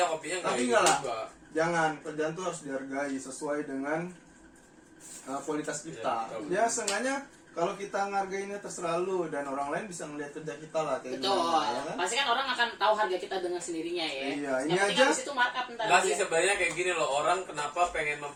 kopinya nggak Tapi ini enggak lah. juga. Jangan, kerjaan tuh harus dihargai sesuai dengan kualitas kita. Ya, betul. Ya seenggaknya kalau kita ngargainnya terserah lu dan orang lain bisa ngeliat kerja kita lah kayak Betul. gimana, ya kan? Pasti kan orang akan tahu harga kita dengan sendirinya ya. Iya, Yang ini penting aja. habis itu markup ntar. Nggak sih dia. sebenarnya kayak gini loh, orang kenapa pengen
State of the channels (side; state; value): both; identical; correlation 1.00